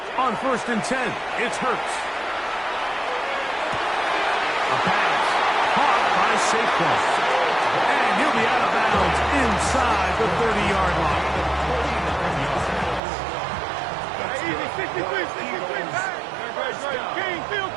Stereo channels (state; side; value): drops out; left; at 13.0 s